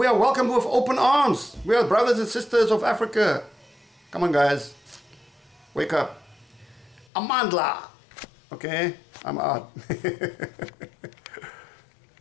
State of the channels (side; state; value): right; drops out; at 7.1 s